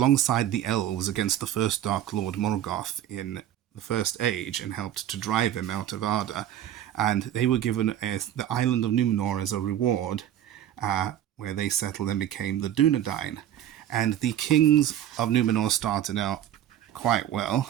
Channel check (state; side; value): quieter; left; 11.4 dB